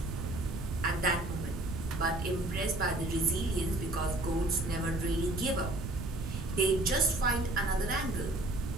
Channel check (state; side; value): noise; right; rumble, 7 dB below the sound